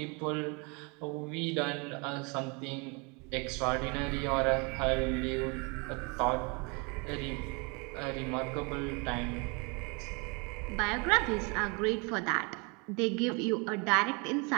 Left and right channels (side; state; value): left; quieter; 31.2 dB